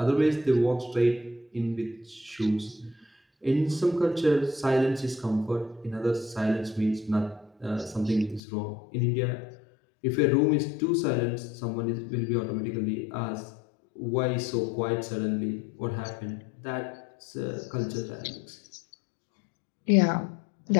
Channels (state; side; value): drops out; right; at 8.4 s